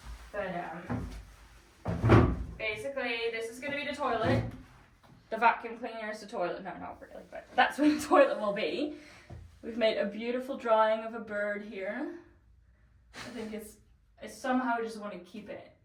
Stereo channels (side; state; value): both; identical; correlation 1.00